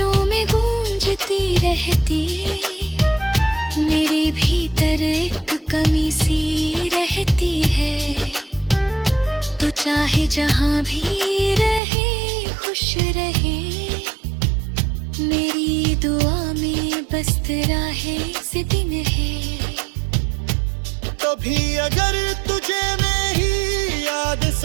में गूंजती रहती, मेरे भीतर एक कमी सी रहती है। तो चाहे जहां भी रहे खुश रहे, मेरी दुआ में बस तेरा है से दिन है। कभी अगर तुझे मेरी याद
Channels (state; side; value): drops out; left; at 11.8 s